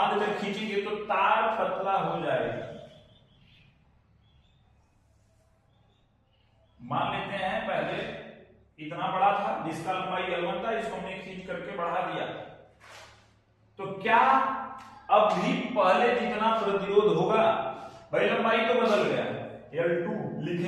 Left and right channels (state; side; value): identical; both; correlation 1.00